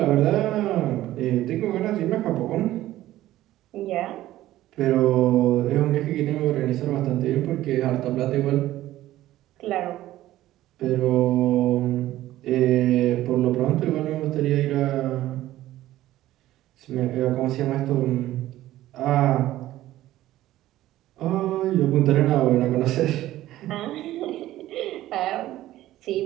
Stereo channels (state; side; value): quieter; left; 14.8 dB